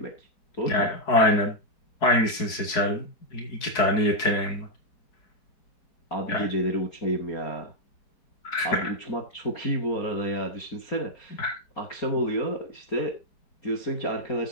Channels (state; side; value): late; right; 4.7 ms